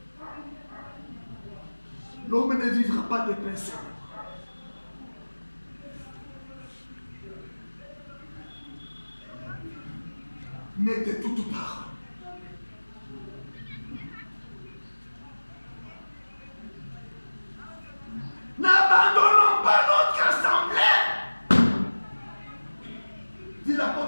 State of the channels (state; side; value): inverted; both; correlation -1.00